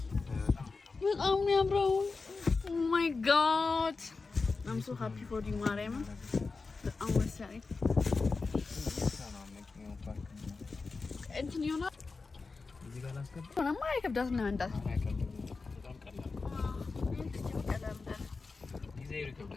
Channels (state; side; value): quieter; right; 4.2 dB